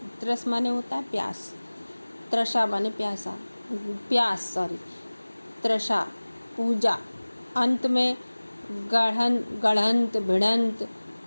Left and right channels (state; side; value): inverted; both; correlation -1.00